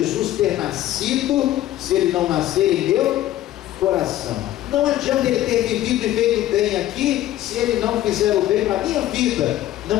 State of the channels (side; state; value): right; quieter; 13.8 dB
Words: ter nascido se ele não nascer em meu coração. Não adianta ele ter vivido e feito bem aqui se ele não fizer o bem para a minha vida.